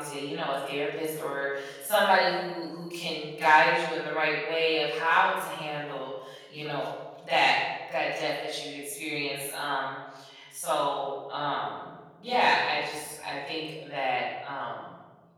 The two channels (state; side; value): identical; both; correlation 1.00